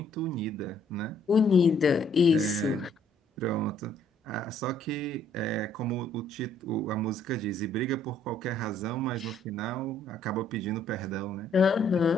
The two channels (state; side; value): normal; both; correlation 0.64